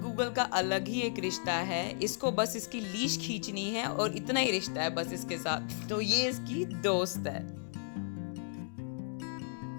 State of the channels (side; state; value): right; silent; digital silence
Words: का अलग ही एक रिश्ता है। इसको बस इसकी लीश खींचनी है और इतना ही रिश्ता है बस इसके साथ। तो ये इसकी दोस्त है।